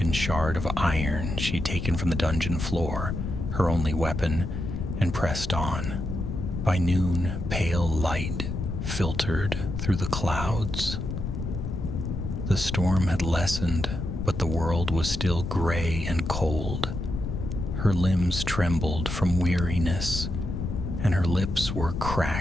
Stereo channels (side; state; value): left; noise; rumble, 4 dB below the sound